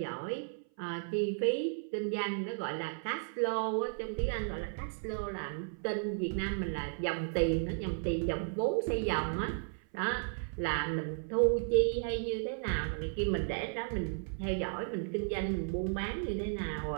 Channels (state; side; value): silent; left; 55 dB below the other